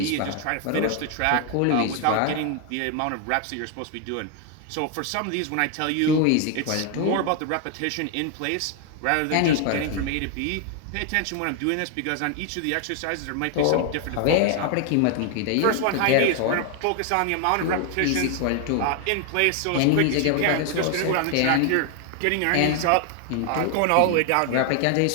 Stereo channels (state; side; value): different; both; correlation 0.01